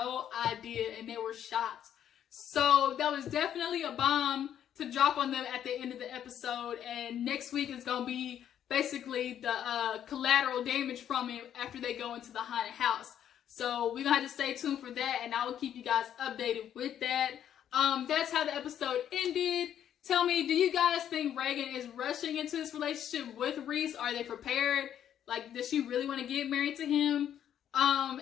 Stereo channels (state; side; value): quieter; right; 10.0 dB